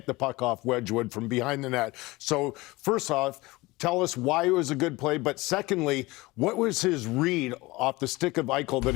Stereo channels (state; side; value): quieter; right; 21.4 dB